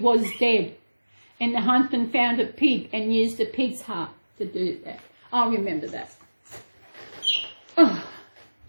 dead. And the huntsman found a pig and used the pig's heart to do that. I remember that.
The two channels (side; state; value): both; inverted; correlation -1.00